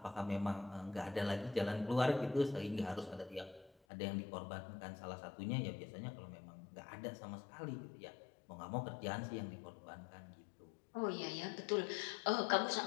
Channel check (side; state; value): right; drops out; at 3.7 s